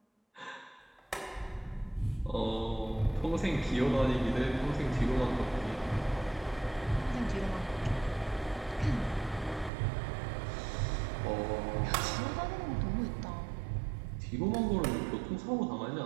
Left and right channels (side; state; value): left; drops out; at 9.7 s